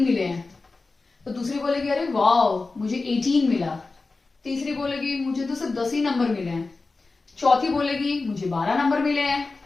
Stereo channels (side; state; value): right; quieter; 3.7 dB